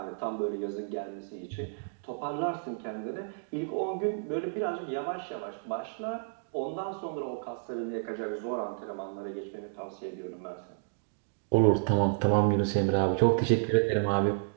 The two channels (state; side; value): silent; left; digital silence